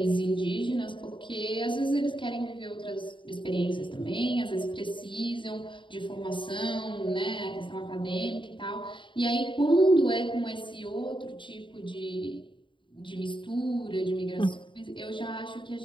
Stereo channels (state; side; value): late; right; 0.24 ms